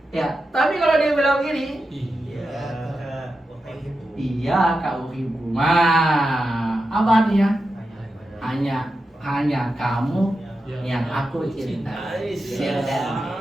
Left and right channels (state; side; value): normal; both; correlation 0.90